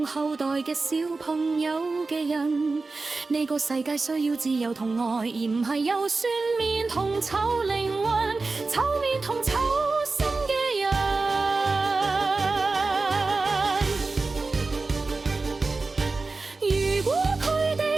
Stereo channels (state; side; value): quieter; left; 3.8 dB